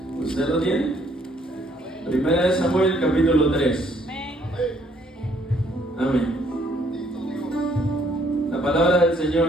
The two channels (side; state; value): both; normal; correlation 0.66